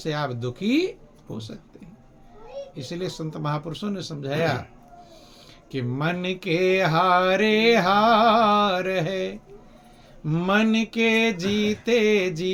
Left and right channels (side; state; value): both; identical; correlation 1.00